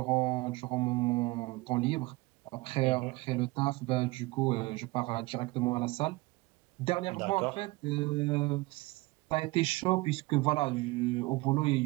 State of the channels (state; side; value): quieter; left; 22.2 dB